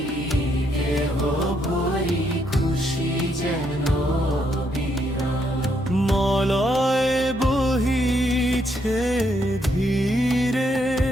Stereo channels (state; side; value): normal; both; correlation 0.75